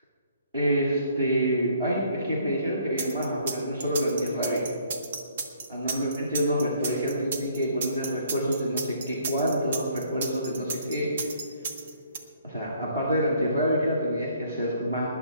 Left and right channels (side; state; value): both; inverted; correlation -0.63